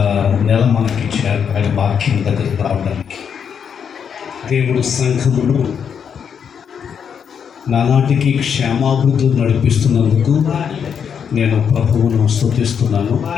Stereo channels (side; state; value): right; quieter; 7.4 dB